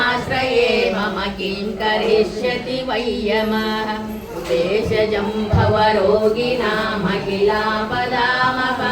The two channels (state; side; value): identical; both; correlation 1.00